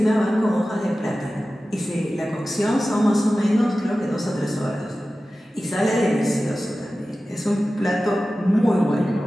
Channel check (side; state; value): both; normal; correlation 0.95